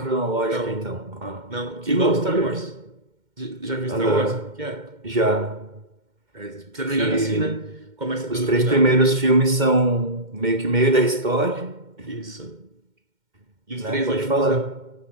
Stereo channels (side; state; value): left; late; 2.1 ms